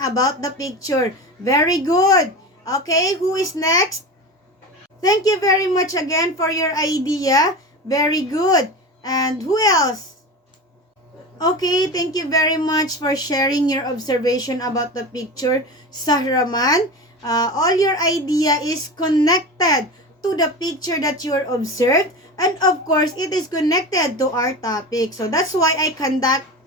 about the picture. Very good. Okay, who is next? Thank you very much again for your idea. Very good. And who else? Okay, thank you very much for sharing your observation about the picture, Sahraman. All your idea is connected to the picture that you observed. And of course, it is connected to our topic. So that's why I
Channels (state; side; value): normal; both; correlation 0.27